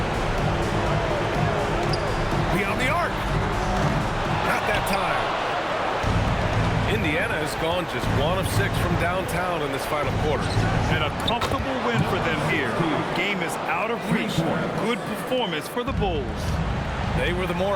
Beyond the arc. Not that time. Indiana has gone just 1 of 6 from downtown in this final quarter. And a comfortable win for them here. The game is out of reach. Good performance for the Bulls. They were the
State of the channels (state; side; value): identical; both; correlation 1.00